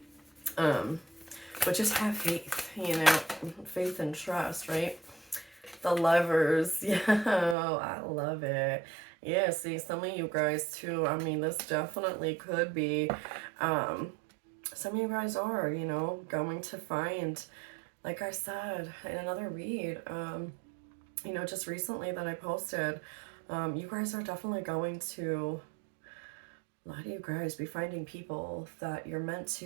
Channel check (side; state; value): left; drops out; at 7.6 s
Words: But just have faith, faith and trust, right? The Lovers, yeah, I love it. Yeah, see, some of you guys too, I mean, this definitely could be, some of you guys are, going to find, like I said in another read, just recently that I posted, you guys are definitely going to, a lot of you guys be finding people that you're meant